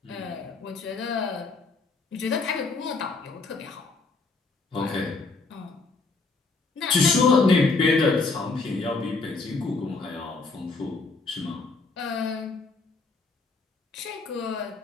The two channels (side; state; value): right; quieter; 3.9 dB